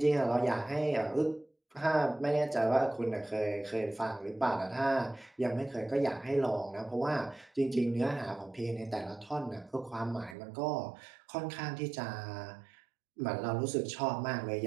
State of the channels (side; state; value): left; drops out; at 10.4 s